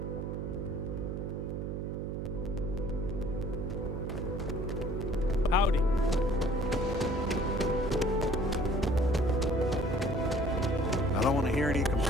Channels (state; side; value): noise; right; hum, 3 dB below the sound